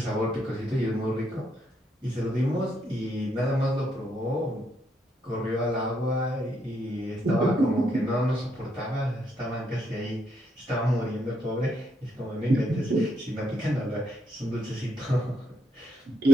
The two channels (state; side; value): normal; both; correlation 0.75